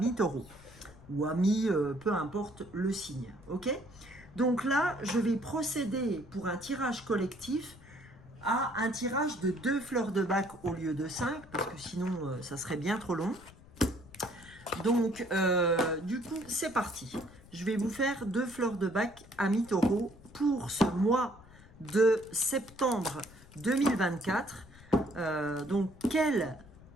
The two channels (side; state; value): left; noise; rumble, 21 dB below the sound